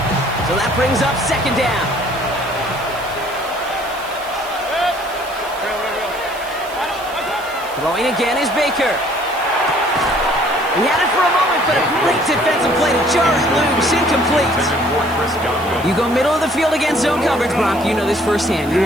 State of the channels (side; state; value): right; noise; hiss, 19 dB below the sound